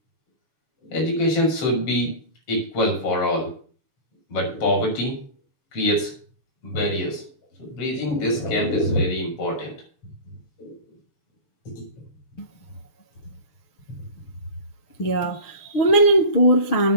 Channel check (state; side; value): late; right; 6.8 ms